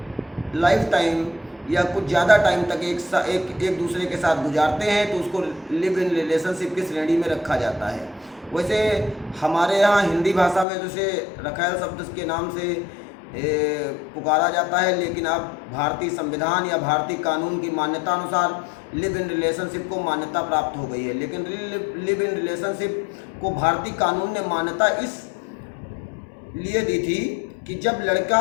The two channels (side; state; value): right; drops out; at 10.7 s